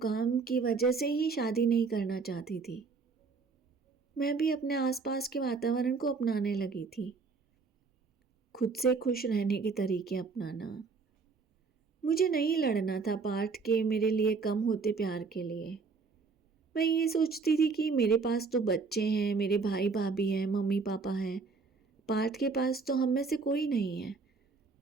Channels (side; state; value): left; quieter; 4.7 dB